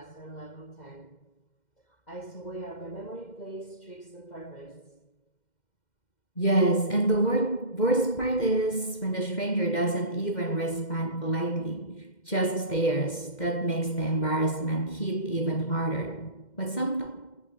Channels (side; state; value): right; late; 2.1 ms